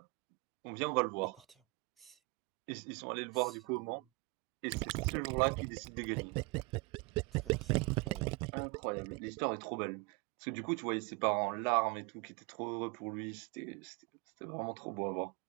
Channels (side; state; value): left; quieter; 27.5 dB